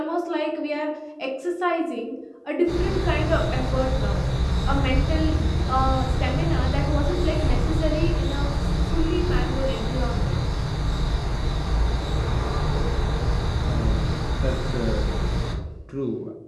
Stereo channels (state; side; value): identical; both; correlation 1.00